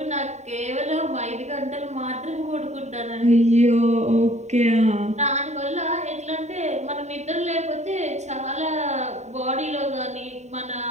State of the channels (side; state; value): left; late; 0.33 ms